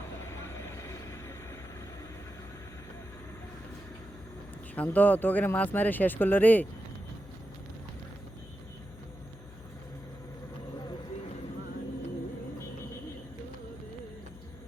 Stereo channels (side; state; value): left; noise; hum, 16 dB below the sound